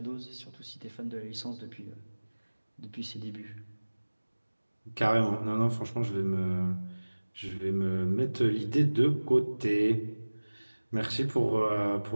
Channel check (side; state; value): both; inverted; correlation -1.00